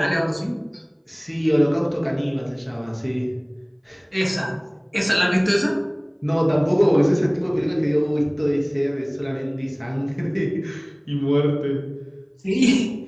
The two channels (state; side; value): identical; both; correlation 1.00